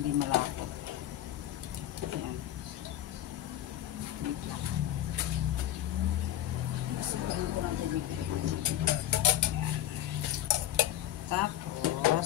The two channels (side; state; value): right; quieter; 12.7 dB